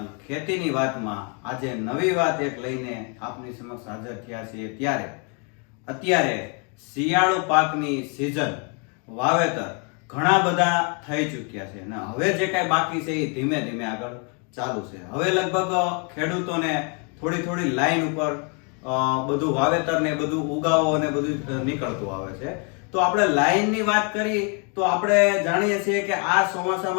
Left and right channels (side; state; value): right; quieter; 36.7 dB